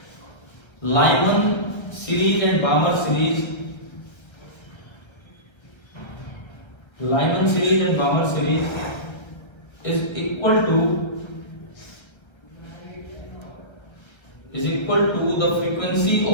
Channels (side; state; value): right; late; 1.3 ms